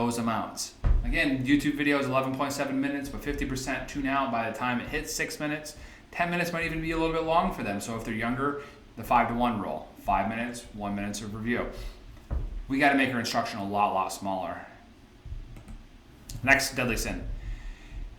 amounts. Again, YouTube video is 11.7 minutes, but 50% tune out by the time it hits 6 minutes. 10 minutes might even be a little bit long for them. So if they're younger, the 5 to 1 rule, 5 minutes, 1 minute of review. We got to make our instruction a lot smaller. Next deadly sin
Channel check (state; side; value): identical; both; correlation 1.00